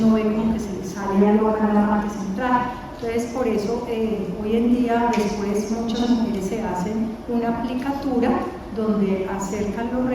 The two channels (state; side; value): identical; both; correlation 1.00